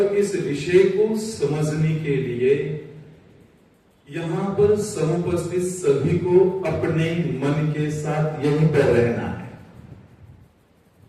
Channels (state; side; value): identical; both; correlation 1.00